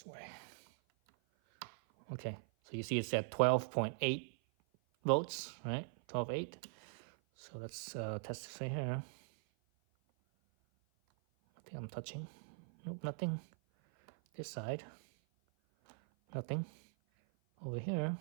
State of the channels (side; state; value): left; silent; 50 dB below the other